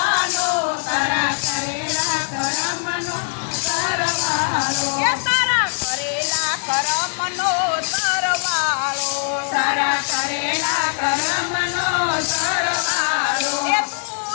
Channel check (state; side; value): silent; right; 65 dB below the other